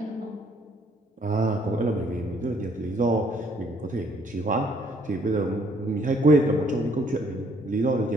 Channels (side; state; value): both; normal; correlation 0.64